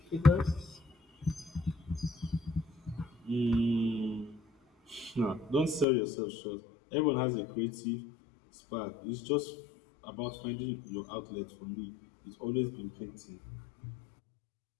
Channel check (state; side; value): drops out; right; at 5.9 s